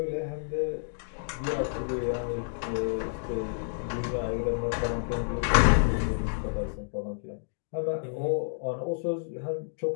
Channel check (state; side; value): silent; right; digital silence